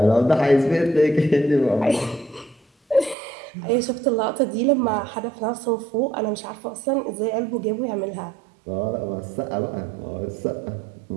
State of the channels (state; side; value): drops out; left; at 3.2 s